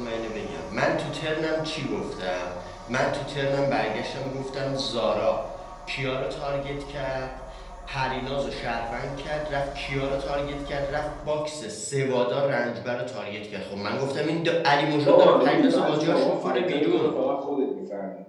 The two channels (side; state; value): both; identical; correlation 1.00